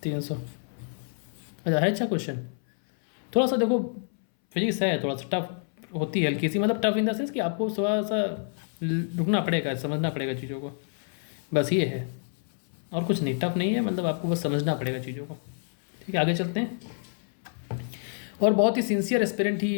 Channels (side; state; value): right; silent; 60 dB below the other